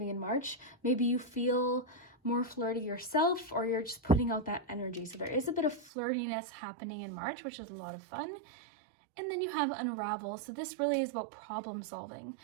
in March, maybe you feel more flirty yourself, or you're just putting out that energy. So there is a bit of flirtiness happening in March, which is a lot of fun. And then you have unravel. So this really is about problem solving.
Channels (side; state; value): left; drops out; at 5.9 s